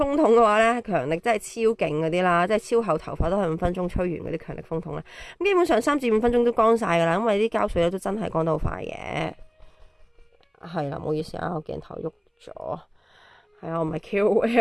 筒嘅話咧，強力真係超勁嗰啲啦，即係超厚頭髮都係5分鐘吹完嗰啲強力風筒咧，咁基本上3至5分鐘都乾晒噶啦，因為啲膠水咧都真係乾得好快嘅。係啦，唔好意思啊，我鏡頭喐咗，係啊，我唔係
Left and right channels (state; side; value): identical; both; correlation 1.00